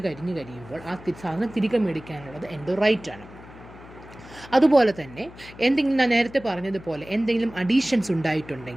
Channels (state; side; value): noise; left; hum, 19 dB below the sound